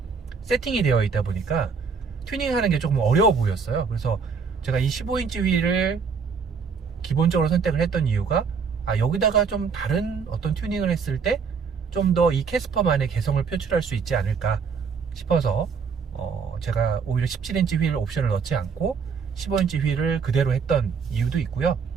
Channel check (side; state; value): left; quieter; 5.8 dB